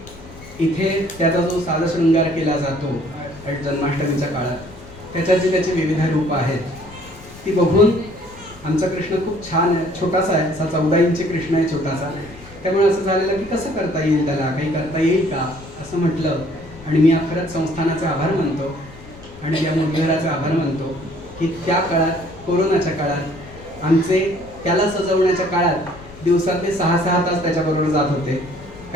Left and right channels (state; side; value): noise; left; rumble, 19 dB below the sound